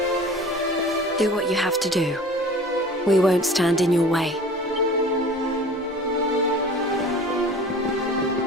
Do what you have to do. We won't stand in your way.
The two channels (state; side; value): normal; both; correlation 0.42